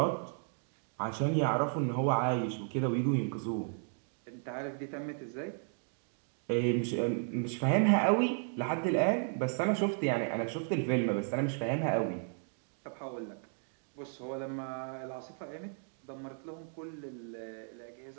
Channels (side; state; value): left; silent; 55 dB below the other